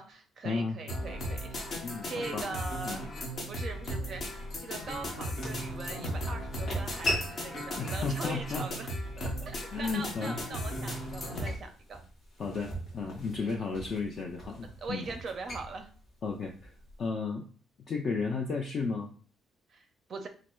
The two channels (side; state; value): both; normal; correlation 0.72